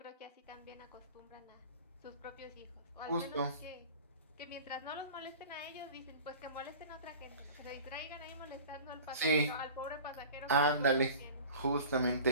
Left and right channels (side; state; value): both; inverted; correlation -0.40